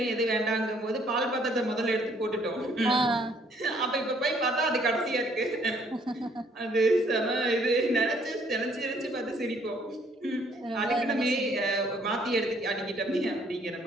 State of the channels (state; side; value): normal; both; correlation 0.64